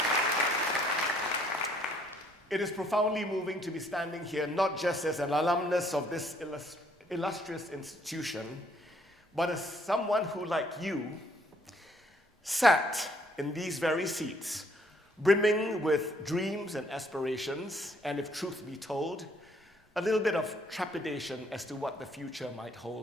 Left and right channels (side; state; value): both; normal; correlation 0.65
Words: It is profoundly moving to be standing here, not just as an alumnus of this illustrious institution, but as someone who, like you, sat in these very seats, brimming with dreams and aspirations, and if truth be told, a little bit of trepidation as to what the future might